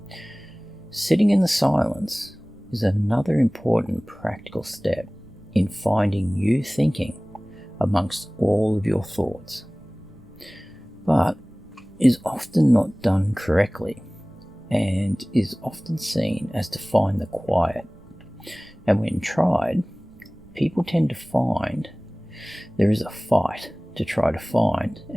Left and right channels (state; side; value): noise; right; rumble, 25 dB below the sound